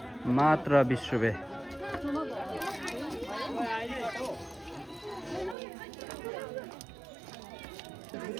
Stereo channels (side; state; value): left; drops out; at 5.6 s